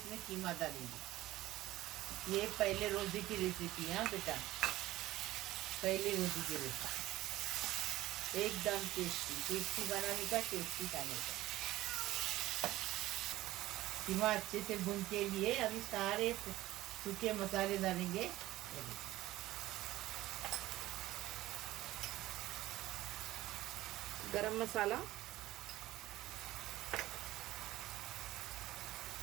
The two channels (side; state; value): left; quieter; 16.2 dB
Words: कीमा डालेंगे। ये पहले रोज़े की रेसिपी है बेटा, पहले रोज़े की रेसिपी, एकदम टेस्टी बनाने का, टेस्टी खाने का। कीमा अच्छे से भून के लिए अभी सारे सूखे मसाले डालेंगे। गरम मसाला,